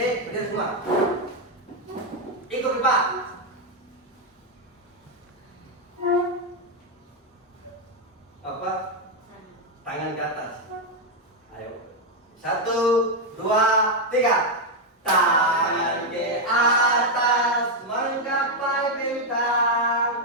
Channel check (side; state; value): both; normal; correlation 0.02